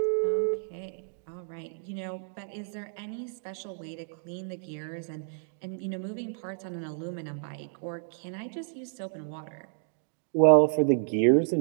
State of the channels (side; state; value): left; silent; digital silence